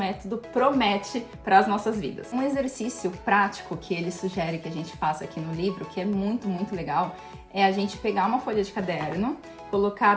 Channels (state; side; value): identical; both; correlation 1.00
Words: promete para as nossas vidas. Um exercício prático que ele sugere que a gente faça aqui no livro, que é muito, muito legal, é a gente pegar uma folha de caderno,